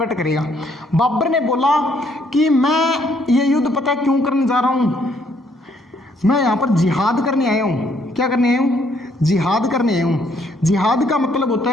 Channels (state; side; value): normal; both; correlation 0.68